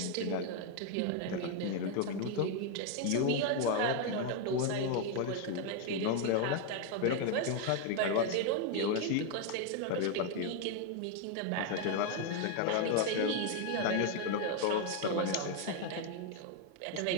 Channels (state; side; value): different; both; correlation 0.01